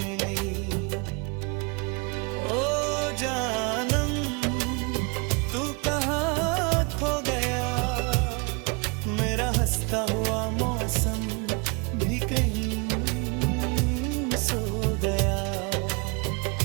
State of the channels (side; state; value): left; quieter; 31.0 dB